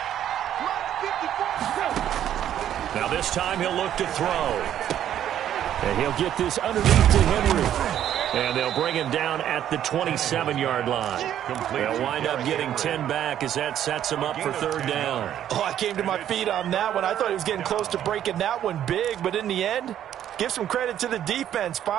Now this time he'll look to throw. And he'll get this underneath to Henry. And they'll bring him down at the 27-yard line. They'll wind up getting 10 back as that sets him up for 3rd down. Oh, I came to my feet on that one. I thought he was getting close to breaking that one big, but in the end, give some credit to the defense,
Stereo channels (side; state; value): left; quieter; 10.8 dB